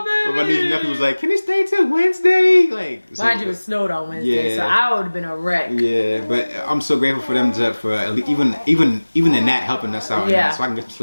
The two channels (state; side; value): inverted; both; correlation -1.00